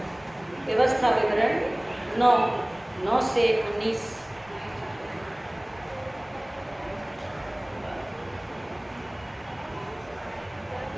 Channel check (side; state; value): right; noise; rumble, 28 dB below the sound